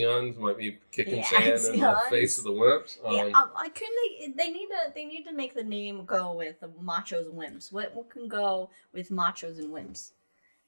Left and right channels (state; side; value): inverted; both; correlation -1.00